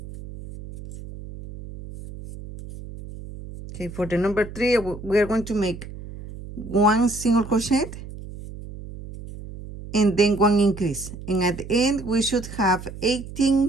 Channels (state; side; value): noise; right; hum, 13 dB below the sound